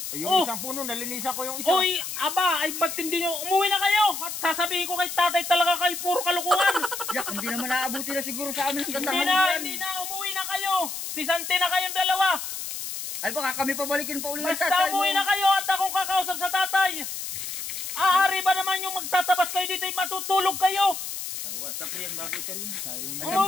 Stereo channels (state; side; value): noise; left; hiss, 6 dB below the sound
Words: ay, yung Oh. isang puno, nalinisan ko yung isa. Oy, aba, ay ba't hindi nyo, umuwi na kayo. At sasabihin ko kay tatay talaga kayo, puro kalukuhan. Yak, hindi naman naabuti na siguro sa amin ang Hindi gandahan na, yan. hindi na, umuwi na kayo. Sisante na kayong dalawa. Ay baka kami pabalikin pa uli ng Basta tatay mo. umuwi na kayo at akong kakausap sa tatay. Aari ba naman yung magtatabas kayo dito, matutulog kayo. Tapos yan, bagay ka rin.